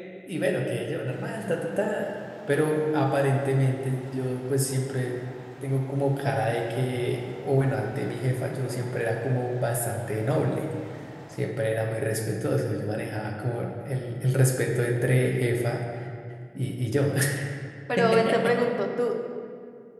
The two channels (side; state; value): both; identical; correlation 1.00